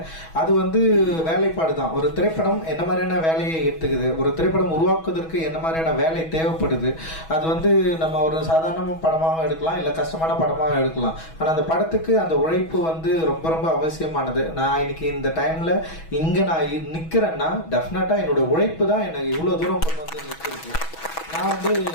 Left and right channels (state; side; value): late; right; 6.2 ms